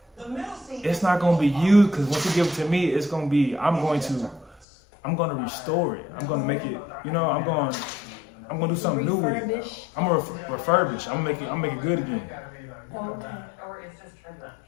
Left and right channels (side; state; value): right; drops out; at 4.7 s